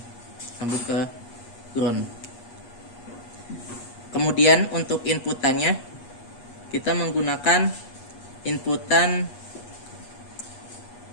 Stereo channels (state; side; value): late; right; 8.3 ms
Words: nyambung ke ground. Kemudian untuk inputannya, kita menggunakan inputan